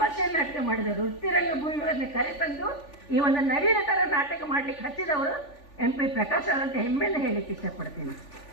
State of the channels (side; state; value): right; late; 3.4 ms